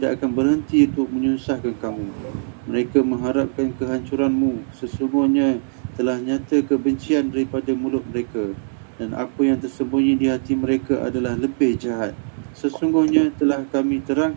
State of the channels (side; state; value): left; silent; 60 dB below the other